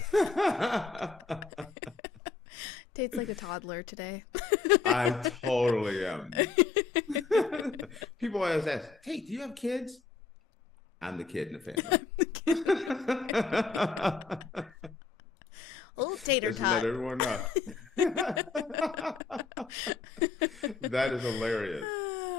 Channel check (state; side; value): quieter; right; 5.0 dB